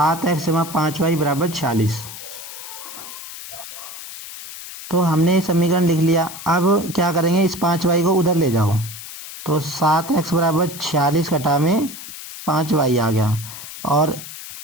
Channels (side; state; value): left; noise; hiss, 12 dB below the sound